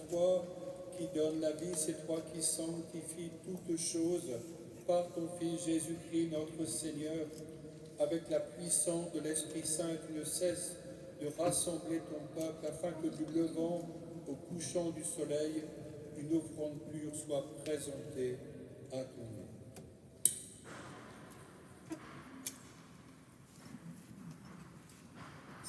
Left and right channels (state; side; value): identical; both; correlation 1.00